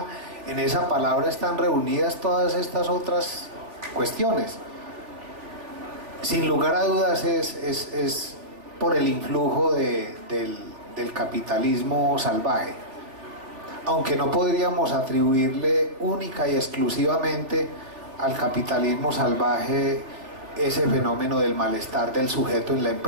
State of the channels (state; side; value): late; left; 3.5 ms